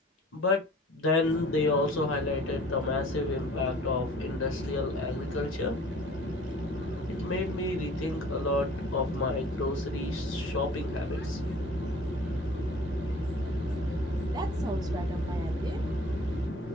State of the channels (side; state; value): both; normal; correlation 0.48